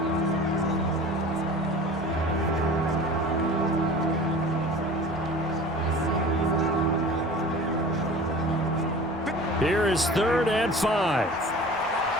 Here is 3rd and 5.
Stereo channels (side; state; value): right; noise; rumble, 23 dB below the sound